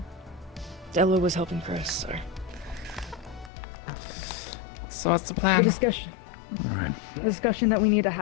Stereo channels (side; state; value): right; drops out; at 3.5 s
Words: Della was helping Chris, so. So what's the plan? The discussion that we need to